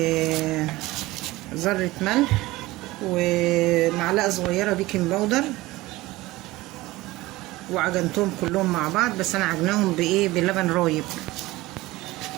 ذره ملح، ومعلقه صغيره بيكنج باودر، وعجنتهم كلهم مع بعض، بس انا عجناهم بايه؟ بلبن رايب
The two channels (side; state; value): left; quieter; 19.1 dB